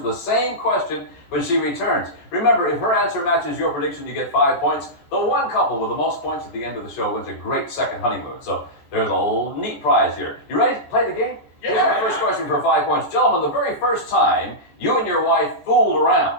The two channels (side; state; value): right; late; 14 ms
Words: same question when she returns. Remember, if her answer matches your prediction, you get 5 points. The one couple with the most points at the end of the show wins a great second honeymoon. So there's a neat prize here. You ready to play the game? Yeah. Here's our first question for 5 points. Gentlemen, the very first time you and your wife fooled around